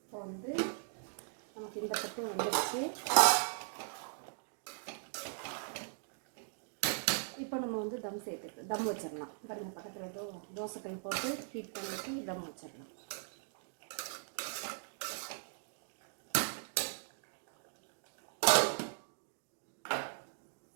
இப்போ வந்து நமக்கு இந்த பக்கம் வந்துடுச்சு. இப்போ நம்ம வந்து தம் வச்சிடலாம். பாருங்கள், பக்கத்தில் தோசைக்கல் போட்டு ஹீட் பண்ணிவிட்டு தம் வச்சிடலாம்.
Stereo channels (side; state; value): left; silent; digital silence